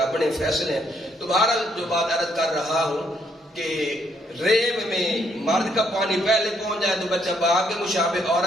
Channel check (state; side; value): normal; both; correlation 0.71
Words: فیصلے ہیں. تو بہرحال جو بات عرض کر رہا ہوں کہ ریب میں مرد کا پانی پہلے پہنچ جائے تو بچہ باپ کے مشابہ,